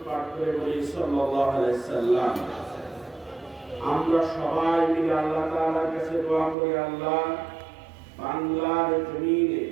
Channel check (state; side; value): drops out; left; at 6.6 s